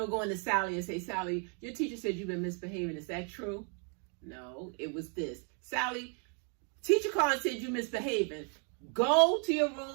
to Sally and say, Sally, your teacher said you've been misbehaving. Is that true? No, it was this. Sally, teacher called and said you misbehaving. Go to your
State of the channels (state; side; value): quieter; left; 39.3 dB